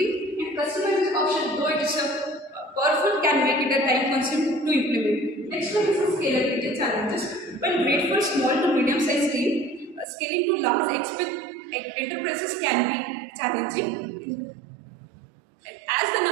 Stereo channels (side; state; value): left; drops out; at 10.1 s